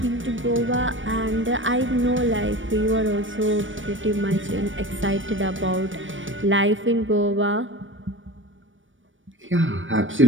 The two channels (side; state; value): left; late; 0.56 ms